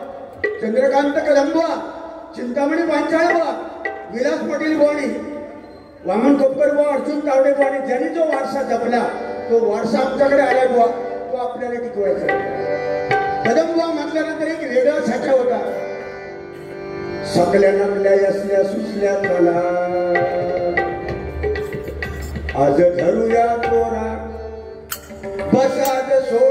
चंद्रकांत कदम बुवा, चिंतामणी पांचाळ बुवा, विलास पाटील बुवानी, वामन खोपकर बुवा, अर्जुन तावडे बुवानी, ज्यांनी जो वारसा जपला तो वारसा आमच्याकडे आला बुवा, तो आपल्याला टिकवायचा. कदम बुवा म्हटल्यानंतर एक वेगळा साचा होता. सकल्या नकल्या असल्या सुचल्या मला, आज धरूया तोरा, बस आज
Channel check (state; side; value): identical; both; correlation 1.00